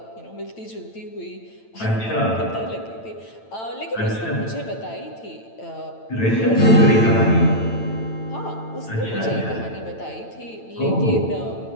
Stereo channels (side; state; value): right; late; 9.0 ms